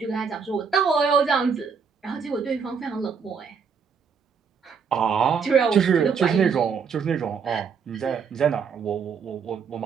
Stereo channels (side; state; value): left; quieter; 6.1 dB